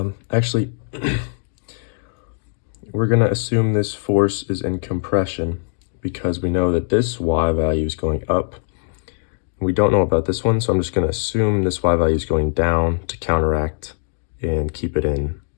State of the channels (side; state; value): right; silent; 60 dB below the other